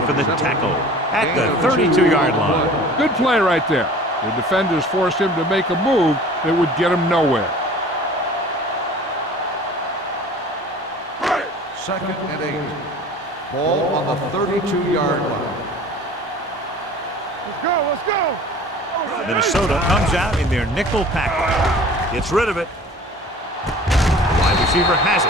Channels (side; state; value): both; normal; correlation 0.44